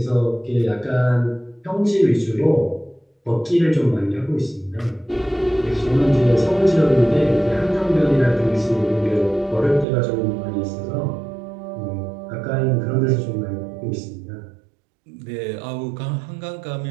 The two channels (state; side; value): drops out; left; at 9.9 s